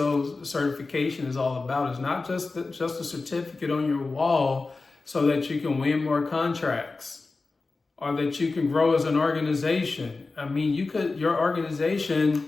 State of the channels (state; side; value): quieter; right; 3.8 dB